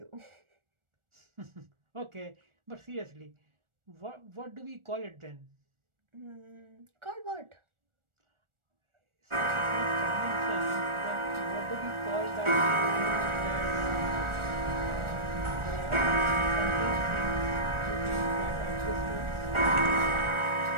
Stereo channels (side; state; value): left; late; 1.4 ms